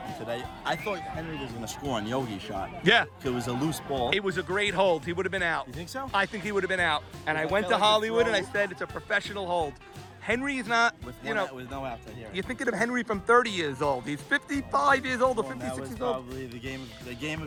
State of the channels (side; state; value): both; identical; correlation 1.00